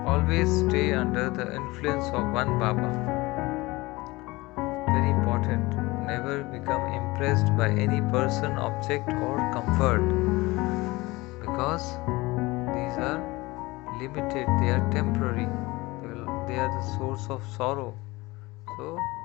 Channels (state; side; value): quieter; right; 21.7 dB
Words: Always stay under the influence of one Baba. Very important. Never become impressed by any person, object, or comfort, because these are limited, they are temporary, they are the source of sorrow. So